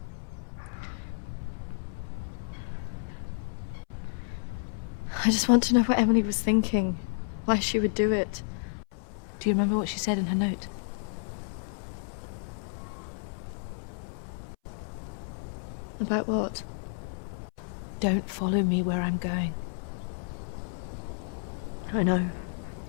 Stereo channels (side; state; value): right; silent; 57 dB below the other